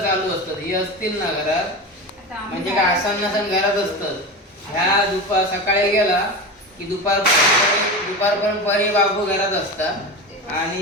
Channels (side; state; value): both; normal; correlation 0.24